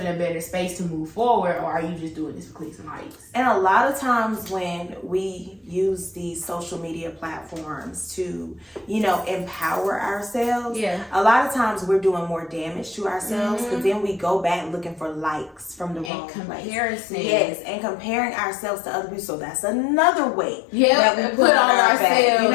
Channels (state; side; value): drops out; right; at 16.1 s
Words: a better space to move forward? Or are you just doing this for clicks and likes? And a lot of times when we use these social media platforms to, empower ourselves, a lot of times we're doing more damage to ourselves because then we go back looking for likes from the wrong comparison. place. Yes, and comparing ourselves to other people. So that's another weight that we put on ourselves. Back. You